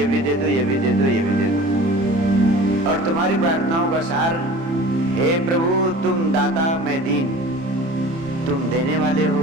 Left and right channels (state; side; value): late; left; 30 ms